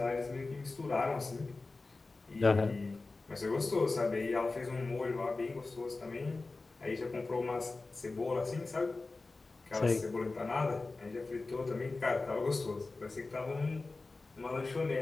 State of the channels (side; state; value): right; quieter; 3.5 dB